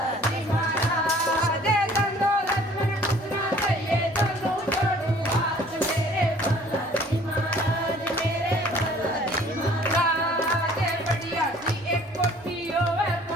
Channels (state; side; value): normal; both; correlation 0.54